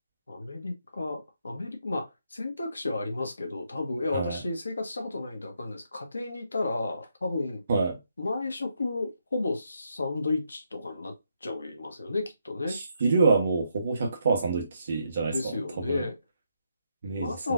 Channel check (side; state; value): both; inverted; correlation -0.78